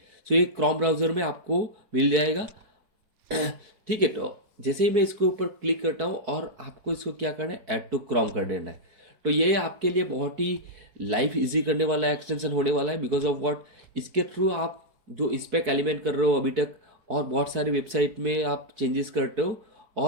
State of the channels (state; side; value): late; left; 4.6 ms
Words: सो ये क्रोम ब्राउज़र में आपको मिल जाएगा। ठीक है, तो जैसे ही मैं इसके ऊपर क्लिक करता हूँ और आपको इसको क्या करना है, ऐड टू क्रोम कर देना है। तो ये आपके लिए बहुत ही लाइफ इजी करने वाला एक्सटेंशन होने वाला है। बिकॉज ऑफ व्हाट, इसके थ्रू आप जो स्पेक एलिमेंट कर रहे हो अभी तक, और बहुत सारे वेबसाइट में आप चेंजेस करते हो